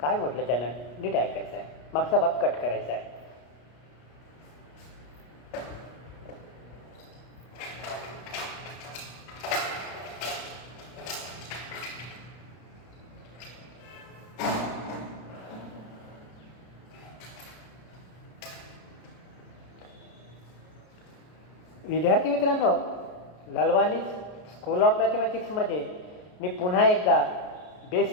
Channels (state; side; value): late; right; 33 ms